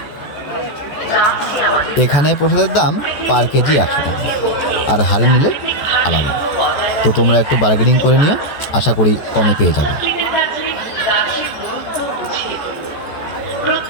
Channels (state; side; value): late; right; 14 ms